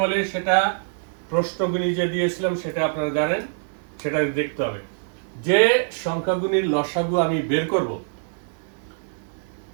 বলে সেটা প্রশ্নগুলি যে দিয়েছিলাম, সেটা আপনারা জানেন, সেটা দেখতে হবে। যে সংখ্যাগুলির লসাগু আমি বের করব,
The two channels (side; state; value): left; silent; digital silence